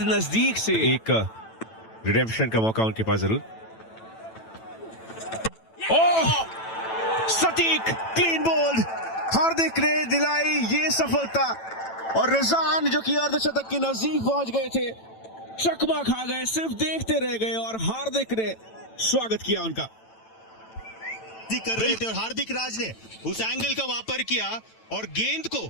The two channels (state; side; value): late; right; 9.0 ms